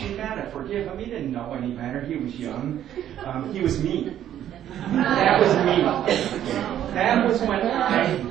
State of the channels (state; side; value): quieter; left; 11.1 dB